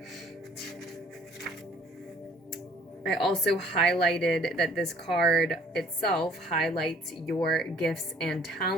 I also highlighted that this card itself highlights your gifts and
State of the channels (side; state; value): both; normal; correlation 0.57